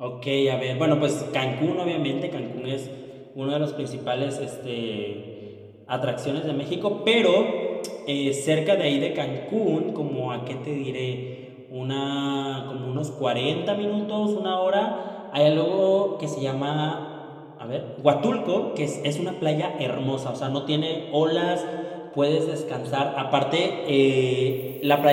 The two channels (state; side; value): identical; both; correlation 1.00